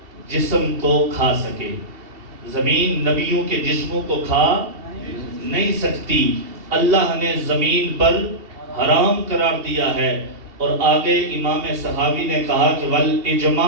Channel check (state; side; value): late; left; 2.7 ms